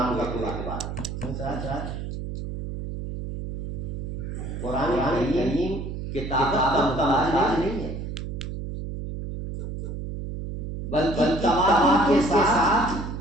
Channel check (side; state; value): right; noise; hum, 6 dB below the sound